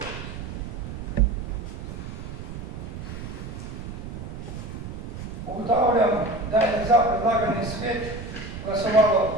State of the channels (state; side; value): noise; right; rumble, 9 dB below the sound